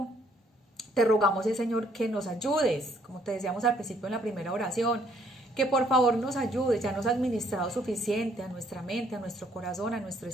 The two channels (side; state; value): both; normal; correlation 0.66